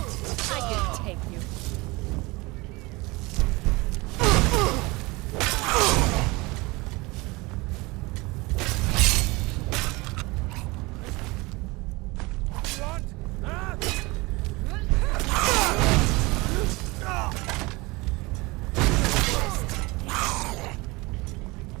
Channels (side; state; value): left; quieter; 23.8 dB